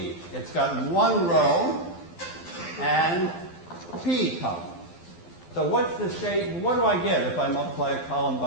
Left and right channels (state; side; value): late; right; 12 ms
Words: It's got 1 row and P columns. So what's the shape? What do I get if I multiply a column